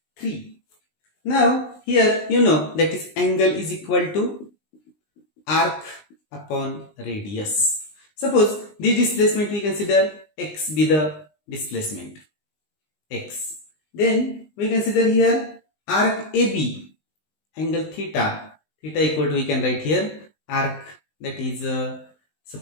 3. Now here you know that is angle is equal to arc upon radius. Suppose the displacement we consider x be the displacement x. Then we consider here arc AB, angle theta, theta equal to, we can write here arc, that is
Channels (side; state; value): right; late; 19 ms